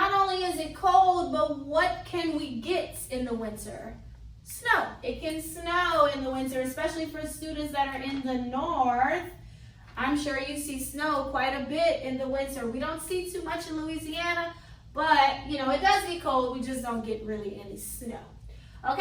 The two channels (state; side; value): identical; both; correlation 1.00